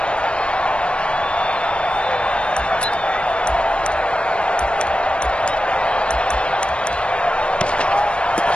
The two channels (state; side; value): late; right; 0.057 ms